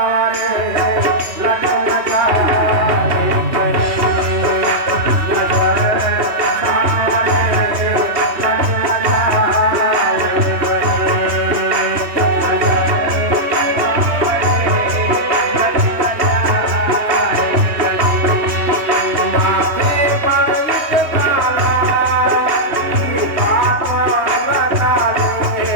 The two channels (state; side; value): late; left; 3.2 ms